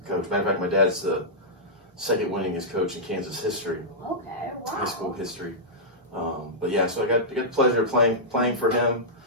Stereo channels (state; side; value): normal; both; correlation -0.13